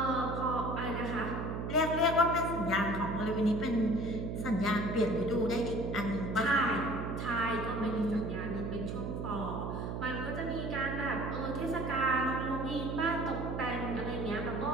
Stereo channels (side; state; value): right; noise; hum, 4 dB below the sound